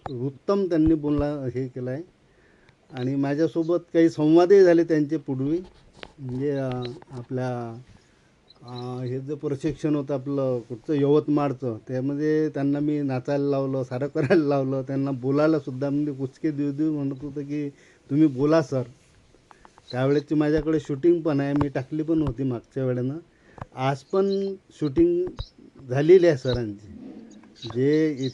उत्तम त्यांनी बोलला हे केलं आहे. आणि माझ्यासोबत काही संवादही झाले त्यांचे पूर्वी, म्हणजे आपल्या हे जे प्रशिक्षण होतं आपलं कुठचं यवतमाळचं, त्यामध्ये त्यांना मी नाचायला लावलं, सारं करायला लावलं, त्यांना बोलायलासुद्धा म्हणजे कुचके देऊ म्हणत होतं की तुम्ही बोला सर. त्यावेळेची माझ्याकडे शूटिंग पण आहे, मी टाकली पण होती मागच्या वेळेनं. आज पण शूटिंग झालेली आहे सरांची. जे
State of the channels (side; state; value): both; identical; correlation 1.00